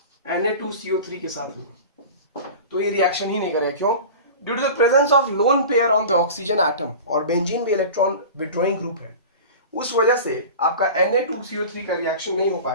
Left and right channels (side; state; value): both; inverted; correlation -0.35